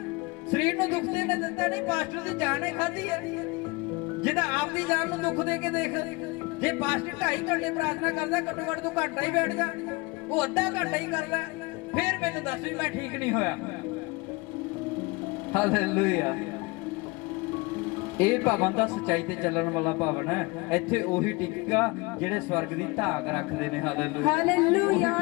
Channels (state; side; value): quieter; right; 25.2 dB